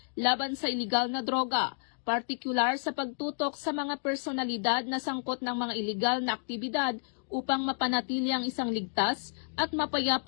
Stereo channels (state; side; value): silent; right; digital silence